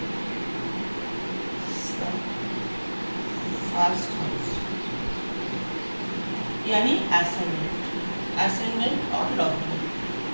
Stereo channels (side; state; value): both; inverted; correlation -1.00